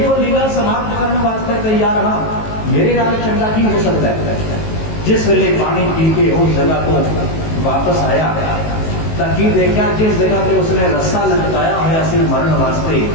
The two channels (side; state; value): right; late; 19 ms